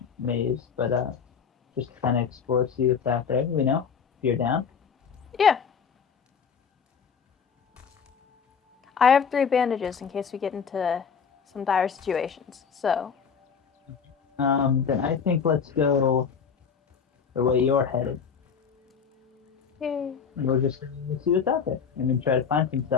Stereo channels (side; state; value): right; quieter; 6.5 dB